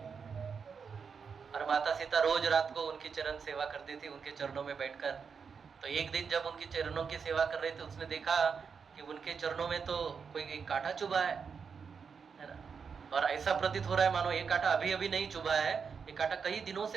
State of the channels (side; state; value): left; quieter; 6.0 dB